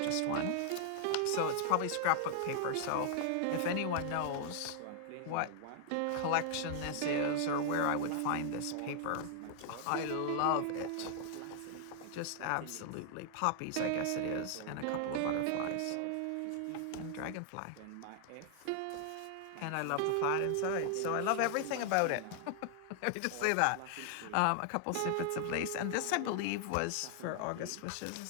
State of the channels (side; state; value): both; different; correlation 0.00